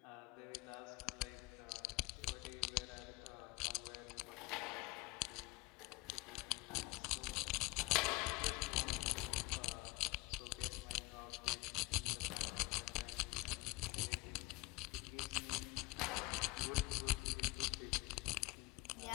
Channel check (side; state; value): right; quieter; 20.0 dB